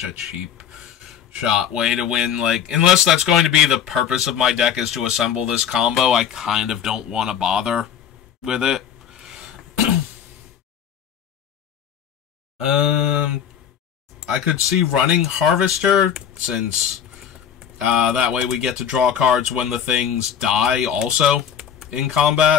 a cheap shot way to win. Like, unless that's going to be the purpose of my deck is to assemble this combo, I kind of don't want to bother with it. I could see running Harvester, since that way we get to draw cards when the things die also in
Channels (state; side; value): quieter; right; 8.7 dB